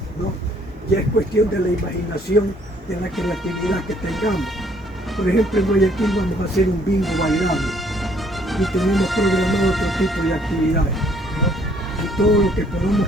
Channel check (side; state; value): both; normal; correlation 0.63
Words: ¿no? Ya es cuestión de la imaginación, de la creatividad que tengamos. Por ejemplo, en Guayaquil vamos a hacer un bingo bailable y tenemos programado otro tipo de actividades, ¿no? Y todo lo que podamos